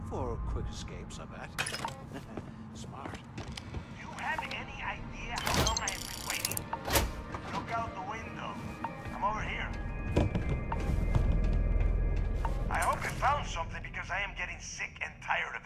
for quick escapes, I bet. Smart. Do you have any idea how long I have been waiting? Look out the window. I'm over here. I hope you found something because I am getting sick and tired of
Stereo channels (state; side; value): identical; both; correlation 1.00